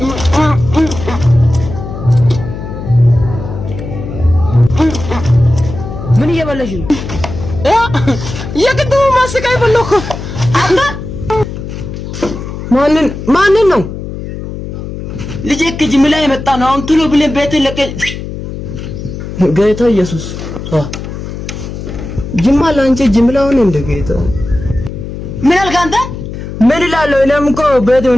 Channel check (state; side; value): noise; left; hum, 8 dB below the sound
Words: ምን እየበላሽ ነው? የቅድሙ ማስቲካ ይበላው እኮ አንተ ማንን ነው? ልጄ ከጅምላ የመጣ ነው። አሁን ቶሎ ብለን ቤት ለቀቅ። ጌታ ኢየሱስ ጅምላ አንቺ ጅምላውን እንደ ጌታ ምን አልክ አንተ? ምን እላለሁ? እኔም እኮ ቤት